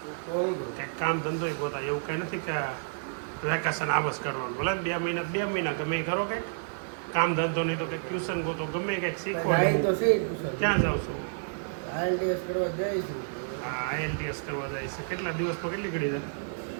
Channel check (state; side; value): silent; left; digital silence